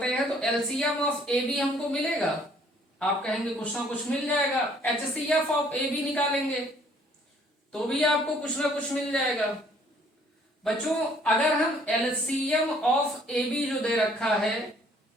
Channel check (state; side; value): normal; both; correlation 0.60